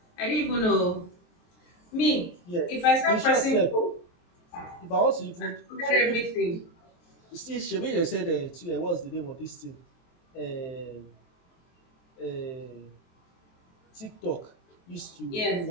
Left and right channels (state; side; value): late; right; 23 ms